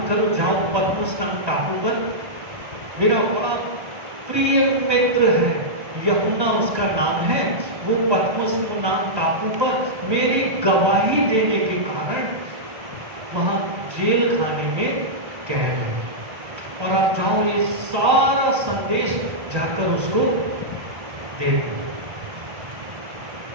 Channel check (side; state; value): left; late; 1.2 ms